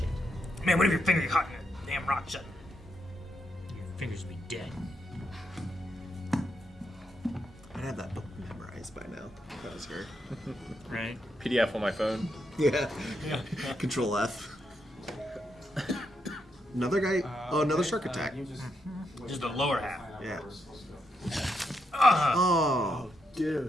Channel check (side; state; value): both; normal; correlation 0.81